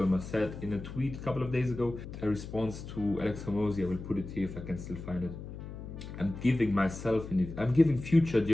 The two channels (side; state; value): left; noise; hum, 10 dB below the sound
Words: said in a tweet a couple of days ago, a response to Alex Hormozy, I will put it here if I can still find it. I'm giving future